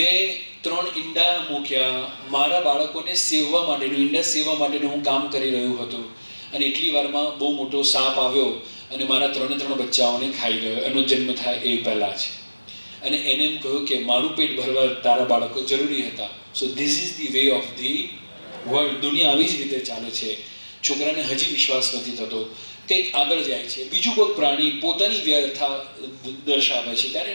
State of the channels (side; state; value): both; inverted; correlation -1.00